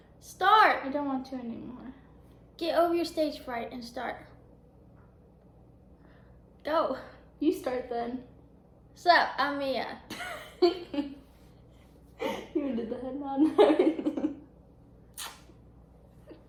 Start. I don't want to anymore. Get over your stage fright and start. Go. You start then. Sup, I'm Mia. You did the head nod and everything.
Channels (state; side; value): identical; both; correlation 1.00